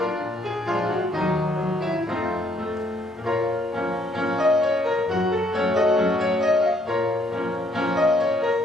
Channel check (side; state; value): both; normal; correlation 0.69